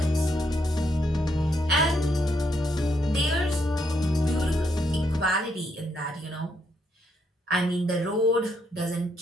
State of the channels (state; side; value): normal; both; correlation 0.76